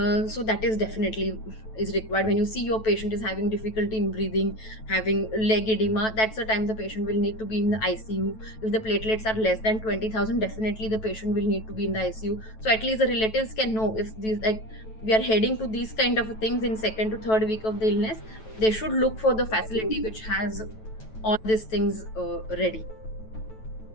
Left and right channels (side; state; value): right; late; 9.1 ms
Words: So that is definitely is required. When you see your patient is having difficulty in breathing, having leg edema, that's the time the patient will need to be in the ICU. If the platelets are less than 20,000, definitely the patient will need to be in the ICU. So at least the relatives can know if these, like, we are heading to these kind of things in second to third week of the illness, they should look for the facility which has all these things ready.